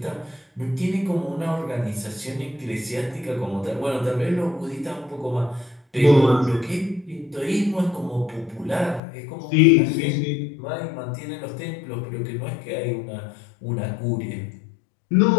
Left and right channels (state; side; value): drops out; right; at 9.0 s